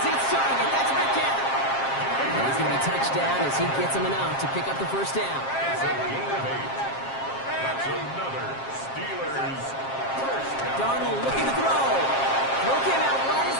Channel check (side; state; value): right; late; 7.5 ms